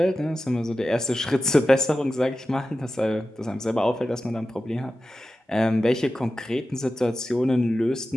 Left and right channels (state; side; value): normal; both; correlation 0.93